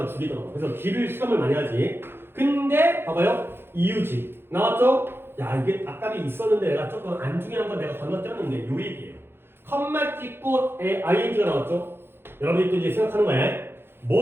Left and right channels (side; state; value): left; late; 0.11 ms